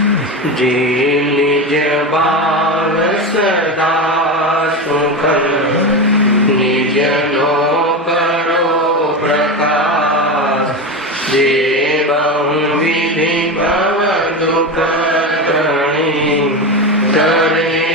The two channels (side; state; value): both; normal; correlation 0.20